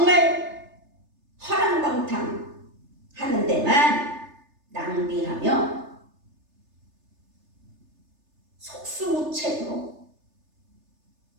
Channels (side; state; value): left; late; 3.3 ms